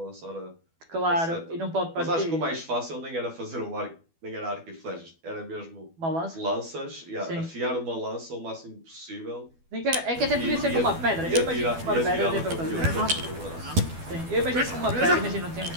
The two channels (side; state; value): left; late; 12 ms